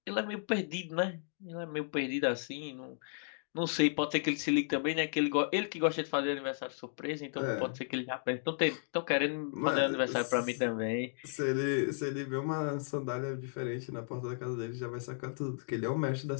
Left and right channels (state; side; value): silent; right; digital silence